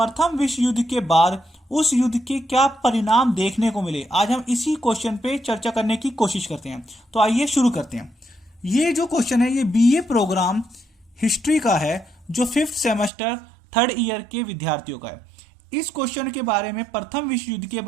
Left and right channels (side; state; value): left; drops out; at 13.1 s